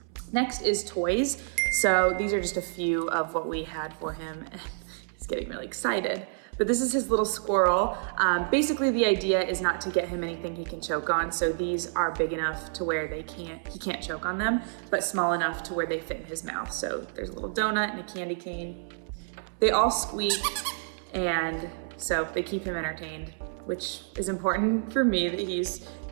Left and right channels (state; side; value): silent; left; 59 dB below the other